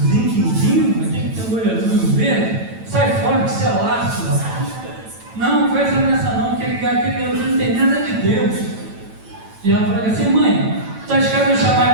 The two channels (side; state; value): left; late; 9.0 ms